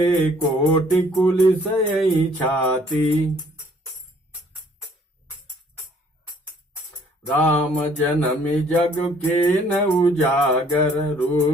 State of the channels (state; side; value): normal; both; correlation 0.60